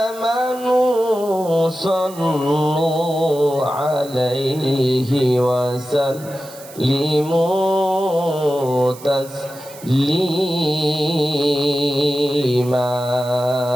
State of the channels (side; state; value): right; noise; hiss, 18 dB below the sound